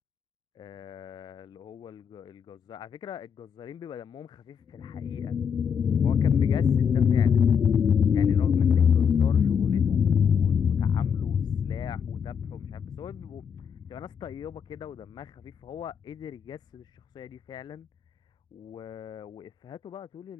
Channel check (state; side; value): quieter; right; 7.2 dB